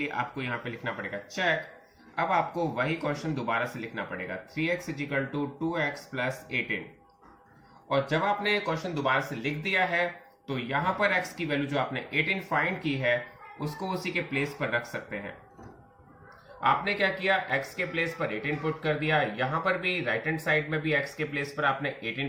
आपको यहाँ पे लिखना पड़ेगा चेक। अब आपको वही क्वेश्चन दोबारा से लिखना पड़ेगा 3x = 2x + 18। और जब आपने क्वेश्चन दोबारा से लिख दिया है तो यहाँ पर x की वैल्यू जो आपने 18 फाइंड की है उसको उसी के प्लेस पर रख सकते हैं। आपने क्या किया, x के प्लेस पर 18 पुट कर दिया, यहां पर भी राइट हैंड साइड में भी x के प्लेस पर आपने 18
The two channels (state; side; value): identical; both; correlation 1.00